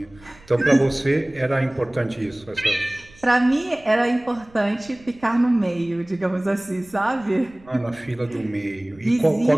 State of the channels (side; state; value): right; noise; rumble, 26 dB below the sound